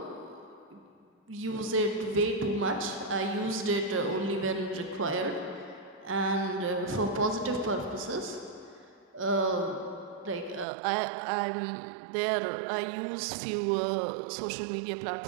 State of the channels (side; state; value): left; drops out; at 10.7 s